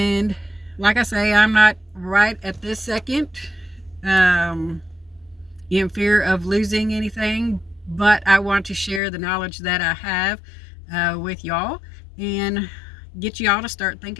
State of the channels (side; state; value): right; drops out; at 9.0 s